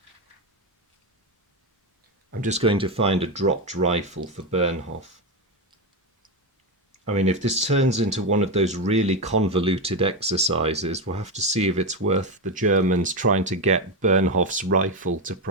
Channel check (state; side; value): normal; both; correlation 0.11